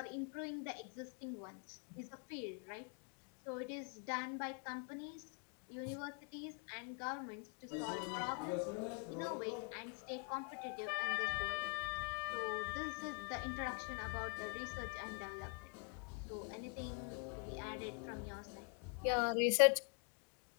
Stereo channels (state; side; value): quieter; right; 32.3 dB